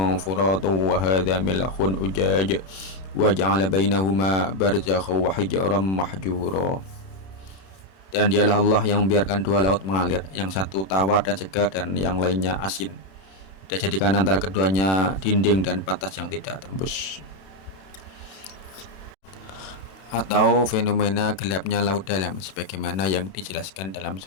furatun wa hadza milhun ujaj wa ja'ala bainahuma barzakhan wa hijran mahjura. Dan dialah Allah yang membiarkan dua laut mengalir, yang satu tawar dan segar dan yang lainnya asin. Dia jadikan antara keduanya dinding dan batas yang tidak tembus. Atau fenomena gelapnya laut dalam, sebagaimana yang dijelaskan dalam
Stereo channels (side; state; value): right; late; 31 ms